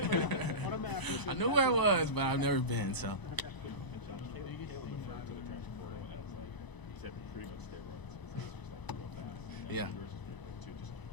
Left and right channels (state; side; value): late; right; 1.0 ms